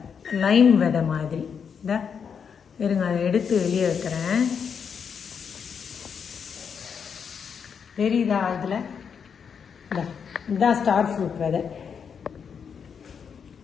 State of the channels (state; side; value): quieter; right; 6.8 dB